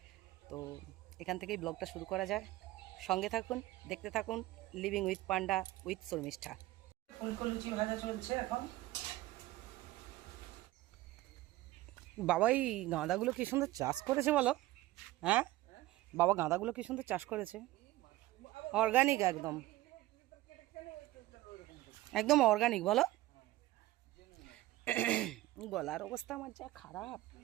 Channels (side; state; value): left; quieter; 17.1 dB